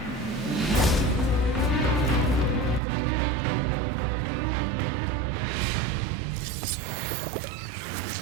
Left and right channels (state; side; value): drops out; left; at 2.8 s